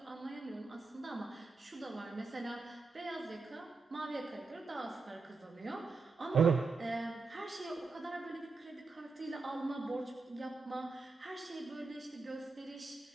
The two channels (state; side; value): quieter; left; 4.0 dB